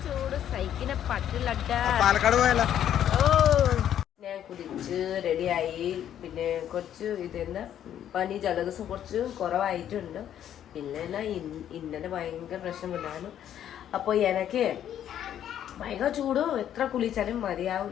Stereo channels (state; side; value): quieter; right; 10.4 dB